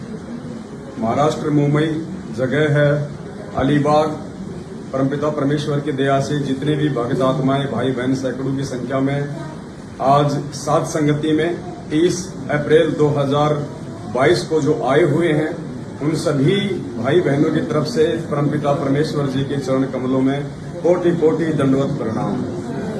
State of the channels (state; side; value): identical; both; correlation 1.00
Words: महाराष्ट्र मुंबई जगह है अलीबाग। परमपिता परमेश्वर की दया से जितने भी भक्त आत्माएं भाई बहन सैकड़ों की संख्या में आज सात संगति में 30 अप्रैल 2022 को जो आए हुए हैं, उन सभी भाई बहनों की तरफ से परमपिता परमेश्वर जी के चरण कमलों में कोटि कोटि दंडवत प्रणाम।